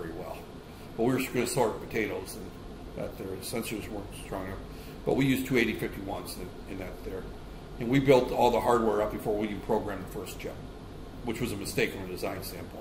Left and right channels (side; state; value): both; identical; correlation 1.00